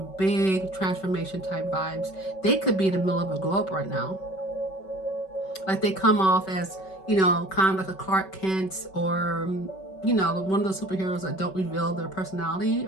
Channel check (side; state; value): right; late; 5.3 ms